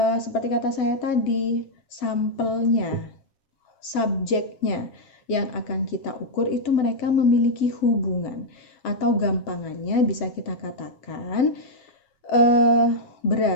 seperti kata saya tadi, sampelnya, subjeknya yang akan kita ukur itu mereka memiliki hubungan. Atau gampangannya bisa kita katakan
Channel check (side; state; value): right; late; 7.3 ms